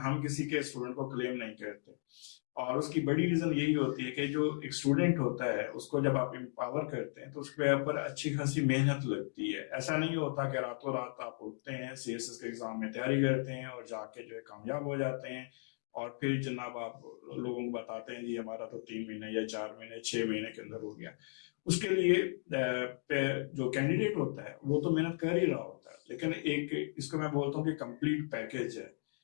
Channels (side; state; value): right; silent; digital silence